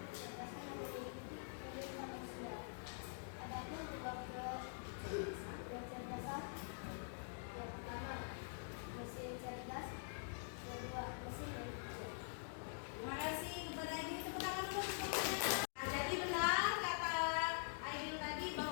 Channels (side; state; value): right; silent; digital silence